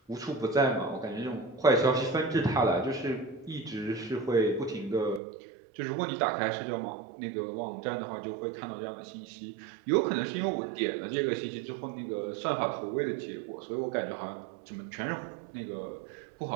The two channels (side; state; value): left; drops out; at 5.2 s